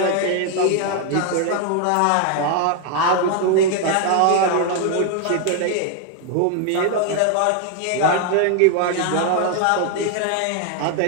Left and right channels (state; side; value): different; both; correlation 0.00